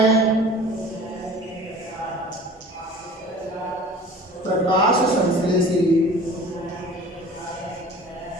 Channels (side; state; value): both; normal; correlation 0.43